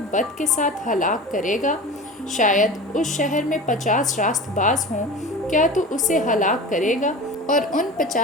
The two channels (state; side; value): normal; both; correlation 0.34